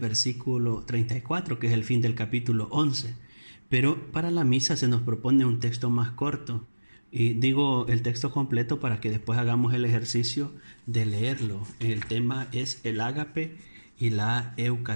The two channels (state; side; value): inverted; both; correlation -1.00